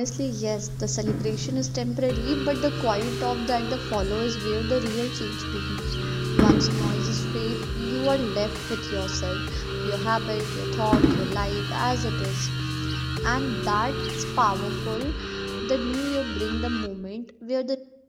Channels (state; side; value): identical; both; correlation 1.00